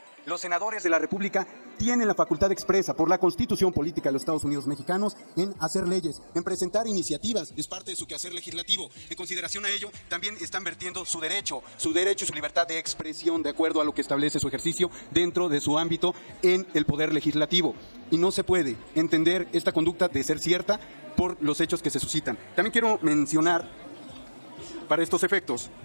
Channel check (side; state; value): both; inverted; correlation -1.00